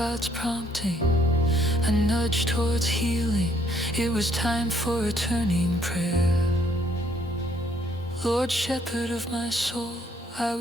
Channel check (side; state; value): both; normal; correlation 0.66